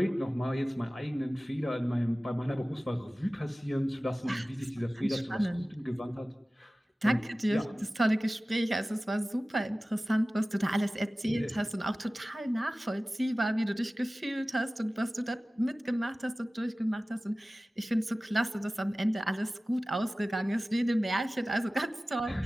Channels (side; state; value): both; normal; correlation 0.97